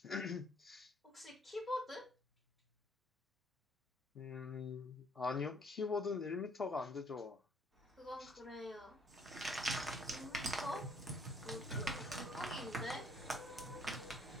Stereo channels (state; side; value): normal; both; correlation 0.63